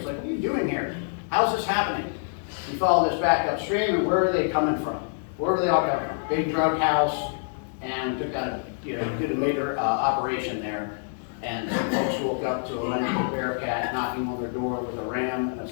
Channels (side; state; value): right; silent; digital silence